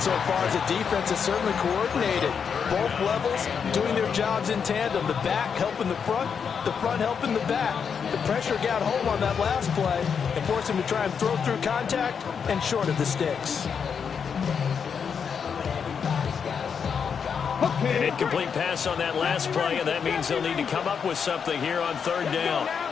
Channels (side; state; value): right; quieter; 6.7 dB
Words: far is the defense is certainly coordinated. Both levels doing their jobs in tandem. The back helping the front helping the back. The pressure got home on that last play and forced him to try and throw through contact and short of the sticks. An incomplete pass on that last play, and that means they'll need to come up with something here on 3rd down.